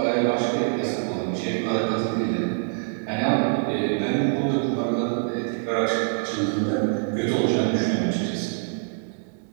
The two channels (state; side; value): silent; left; digital silence